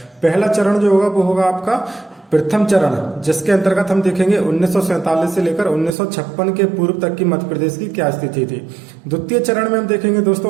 पहला चरण जो होगा वो होगा आपका प्रथम चरण, जिसके अंतर्गत हम देखेंगे 1947 से लेकर 1956 के पूर्व तक की मध्य प्रदेश की क्या स्थिति थी। द्वितीय चरण में हम देखेंगे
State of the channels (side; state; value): left; drops out; at 5.9 s